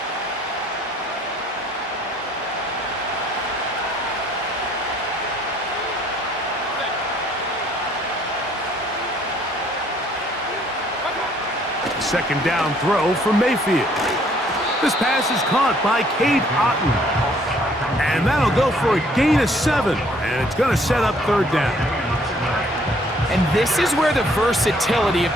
Second down throw for Mayfield. This pass is caught by Cade Otton. And that'll go for a gain of 7. And it's going to set up 3rd down. And this is where the versatility of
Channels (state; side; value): normal; both; correlation 0.62